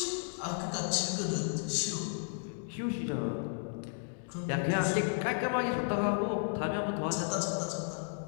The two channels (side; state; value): right; silent; digital silence